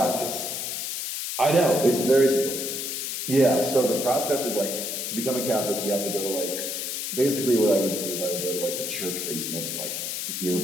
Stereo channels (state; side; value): noise; left; hiss, 3 dB below the sound